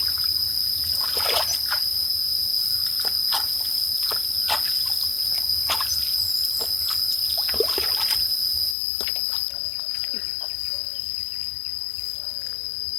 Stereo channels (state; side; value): drops out; right; at 8.8 s